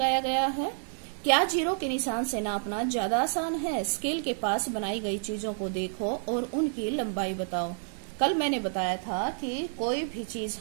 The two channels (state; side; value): silent; left; digital silence